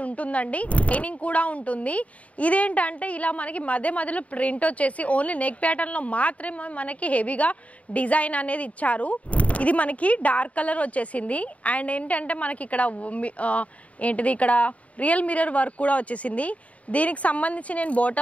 ఉంటుందండి. షైనింగ్ కూడా ఉంటుంది. ఇదేంటంటే ఇలా మనకి మధ్యలో ప్రింట్ వచ్చేసి ఓన్లీ నెక్ ప్యాటర్న్ లో మాత్రమే మనకి హెవీగా డిజైన్ అనేది ఇచ్చారు. ఇది మనకి డార్క్ కలర్ వచ్చేసింది అండ్ ఏంటంటే మనకి ఇక్కడ ఇక్కడ రియల్ మిర్రర్ వర్క్ కూడా వచ్చేసింది. దీనికి సంబంధించి నేను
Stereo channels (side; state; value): right; late; 0.067 ms